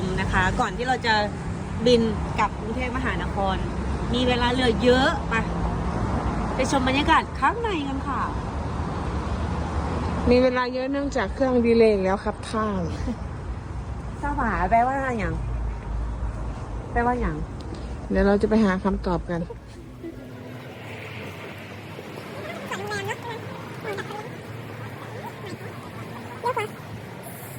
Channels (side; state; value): both; identical; correlation 1.00